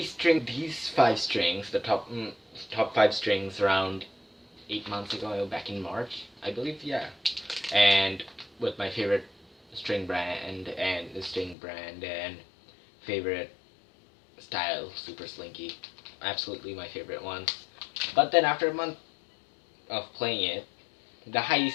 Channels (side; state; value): right; drops out; at 11.6 s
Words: these five strings, the top five strings, around 8 months ago, back in March, I believe. Yeah, and with my favorite string brand and favorite style, Super Slinky, absolutely my favorite one. But then after a month of playing it, the high